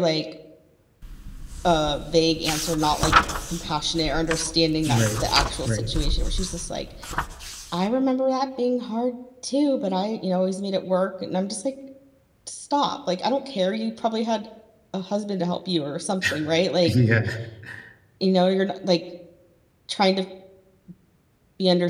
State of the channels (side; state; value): both; identical; correlation 1.00